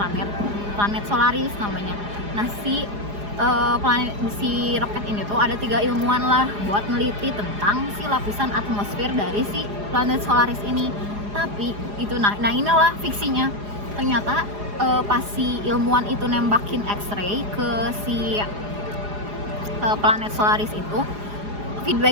Solaris namanya. Nah si roket ini tuh ada 3 ilmuwan lah buat neliti tentang si lapisan atmosfer dari si planet Solaris ini. Tapi itu nah inilah fiksinya. Ternyata pas si ilmuwan itu nembakin X-ray ke si planet Solaris itu,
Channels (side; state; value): left; late; 4.9 ms